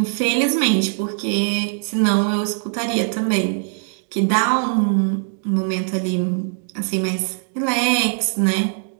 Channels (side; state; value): left; silent; digital silence